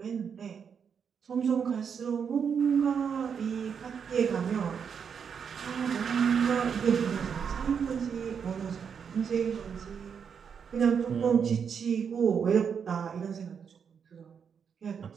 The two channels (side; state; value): left; quieter; 6.9 dB